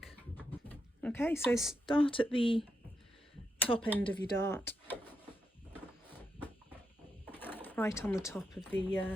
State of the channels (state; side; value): normal; both; correlation 0.83